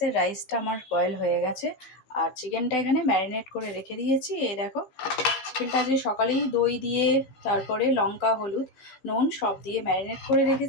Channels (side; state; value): right; late; 16 ms